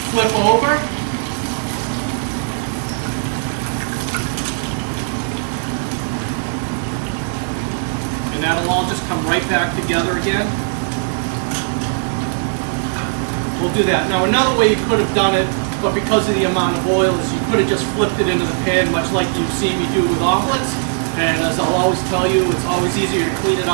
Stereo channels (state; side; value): silent; left; digital silence